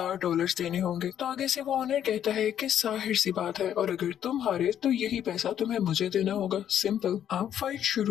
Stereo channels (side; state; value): right; quieter; 10.0 dB